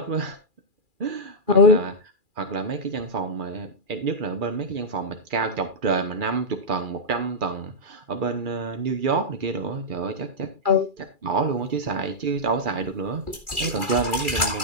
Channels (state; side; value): late; left; 2.4 ms